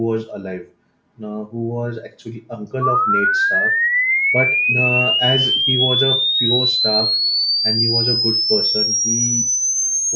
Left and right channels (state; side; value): identical; both; correlation 1.00